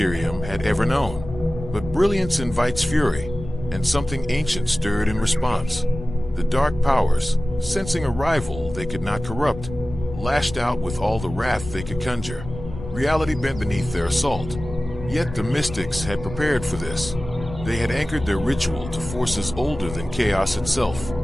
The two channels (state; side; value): noise; left; rumble, 11 dB below the sound